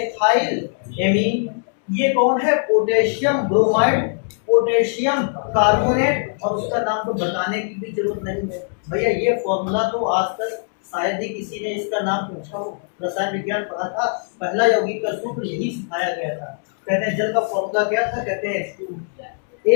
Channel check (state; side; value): silent; right; 65 dB below the other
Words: ये कौन है? Potassium bromide, potassium carbonate. और उसका नाम तो बताने की भी जरूरत नहीं है भैया, ये फॉर्मूला तो आज तक शायद ही किसी ने इसका नाम पूछा हो। रसायन विज्ञान पढ़ा था, पहला यौगिक का सूत्र यही सिखाया गया था। कहते हैं जल का फॉर्मूला क्या था? कहते हैं H2।